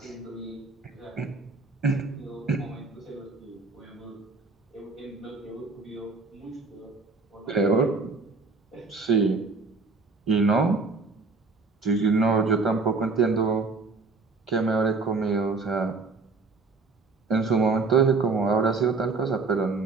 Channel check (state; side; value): quieter; left; 4.1 dB